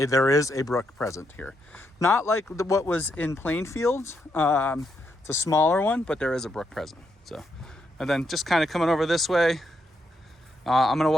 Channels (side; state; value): both; normal; correlation 0.79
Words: is a brook present here. Not like what was in Plainfield. It's a smaller one, but there is a brook present. So, and then just kind of coming over this way, I'm gonna